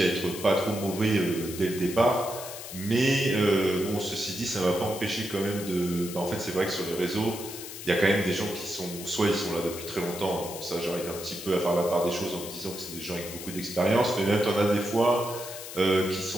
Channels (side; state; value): left; noise; hiss, 11 dB below the sound